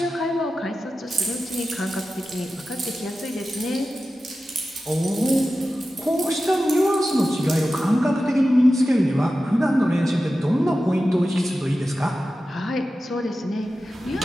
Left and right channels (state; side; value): normal; both; correlation 0.93